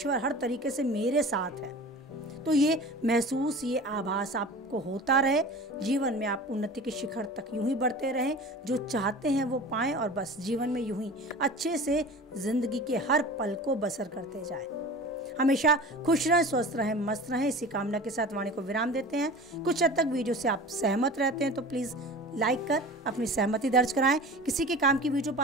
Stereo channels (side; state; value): both; normal; correlation 0.37